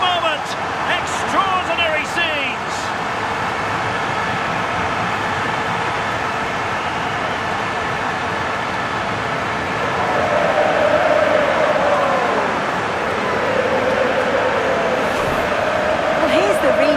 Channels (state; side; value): identical; both; correlation 1.00